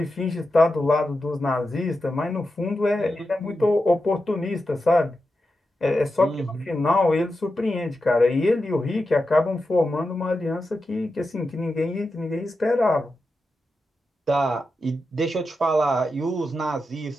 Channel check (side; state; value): both; normal; correlation 0.90